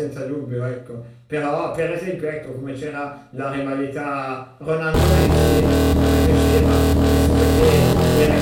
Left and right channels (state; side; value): identical; both; correlation 1.00